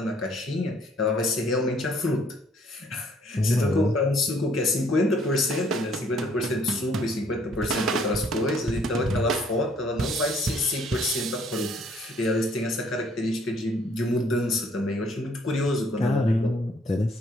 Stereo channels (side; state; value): both; normal; correlation 0.62